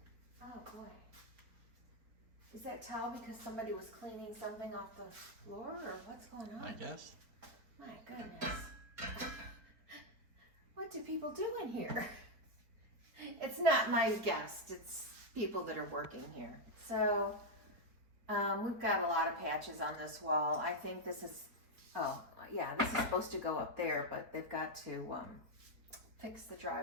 Oh boy. Is that towel because somebody was cleaning something off the floor, or what's going on? I guess. My goodness. What do people do in here? It's not my guest, it's people that are working here. So we've got a lot of patches on this wall. I think this is, oh yeah, this is supposed to go up there, but they've got to fix the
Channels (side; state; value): left; late; 4.3 ms